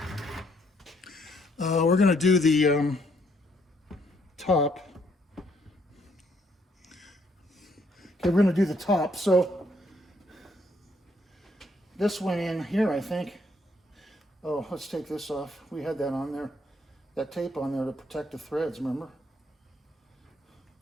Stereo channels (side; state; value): both; normal; correlation 0.70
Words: we're going to do the top. Okay, we're going to do the top. So this went in here, I think. Oh, let's take this off. We had that on there, that tape on there to protect the threads, remember?